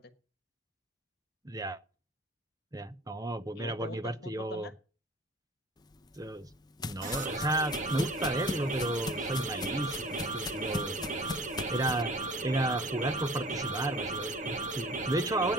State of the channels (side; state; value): both; normal; correlation 0.46